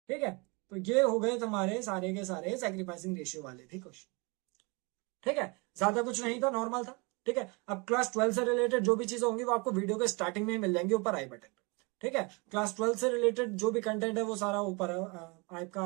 ठीक है, तो ये हो गए तुम्हारे सारे के सारे सैक्रिफाइसिंग रेशियो वाले भी क्वेश्चन। ठीक है, ज्यादा कुछ नहीं था, नॉर्मल था। ठीक है, अब क्लास 12 से रिलेटेड जो भी चीजें होंगी वो आपको वीडियो के स्टार्टिंग में ही मिल जाएंगी ऊपर आई बटन पे। ठीक है। क्लास 12 से रिलेटेड जो भी कंटेंट है वो सारा ऊपर है आपका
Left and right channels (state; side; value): quieter; left; 29.1 dB